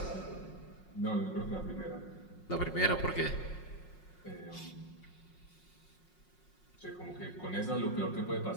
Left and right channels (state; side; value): late; right; 5.5 ms